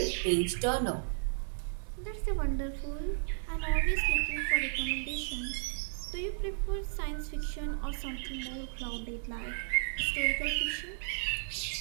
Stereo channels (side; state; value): left; silent; 55 dB below the other